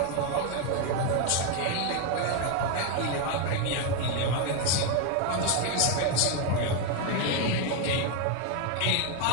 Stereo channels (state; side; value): different; both; correlation 0.01